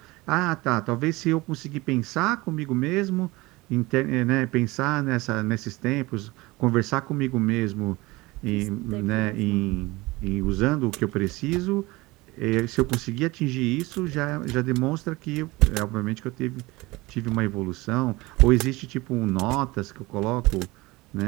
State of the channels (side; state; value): left; quieter; 21.6 dB